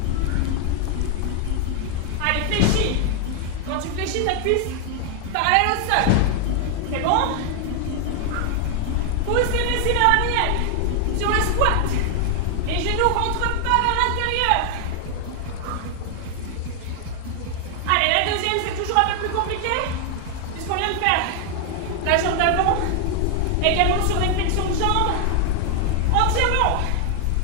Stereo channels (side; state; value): both; different; correlation 0.00